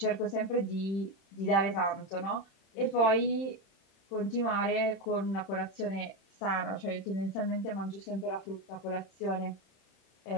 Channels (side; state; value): right; late; 31 ms